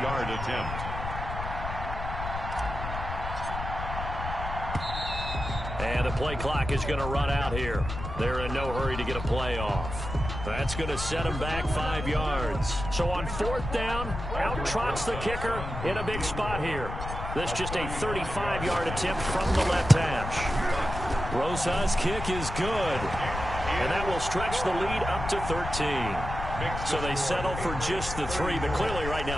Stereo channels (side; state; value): left; noise; rumble, 6 dB below the sound